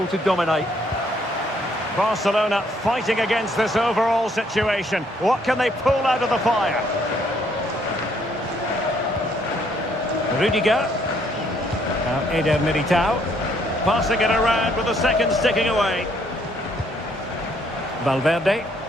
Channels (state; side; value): normal; both; correlation 0.68